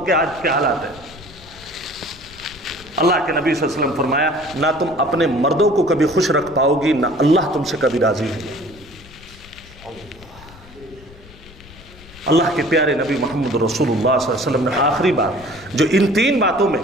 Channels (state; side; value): noise; left; rumble, 21 dB below the sound